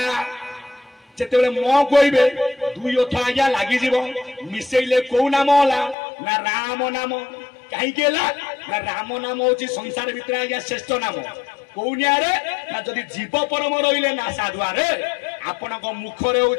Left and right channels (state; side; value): drops out; right; at 6.0 s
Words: जेते बड़े म कहबे दुई ओठ आज्ञा लागि जीव मिसेइले को नाम होला ना राम नाम कहीं ना राम नाम होची संसार भितर आज्ञा श्रेष्ठ नाम कौनियारे ना जदि जीव परम रहिले ना साधुआरे आपणक मुखरे